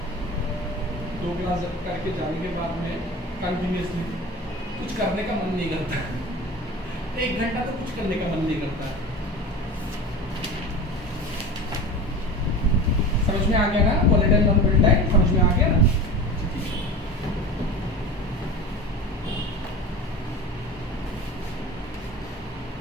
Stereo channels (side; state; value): both; normal; correlation 0.33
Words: दो क्लास करके जाने के बाद में कंटिन्यूसली कुछ करने का मन नहीं करता। 1 घंटा तो कुछ करने का मन नहीं करता। समझ में आ गया ना? वोलेटाइल नॉन वोलेटाइल समझ में आ गया ना?